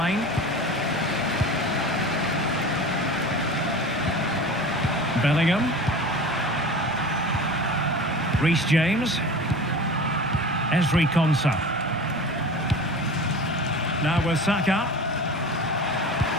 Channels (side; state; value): both; normal; correlation 0.35